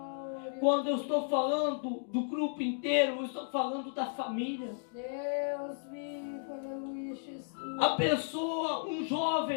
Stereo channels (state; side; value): silent; right; digital silence